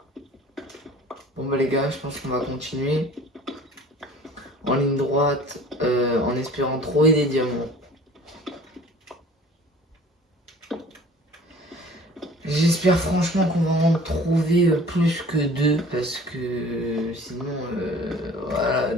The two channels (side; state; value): both; normal; correlation 0.47